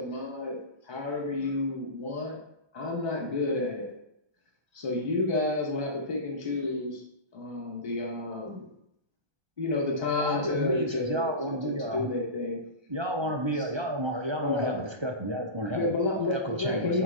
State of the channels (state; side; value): late; left; 1.3 ms